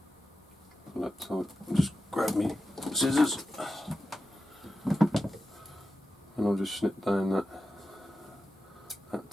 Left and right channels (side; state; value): both; normal; correlation 0.91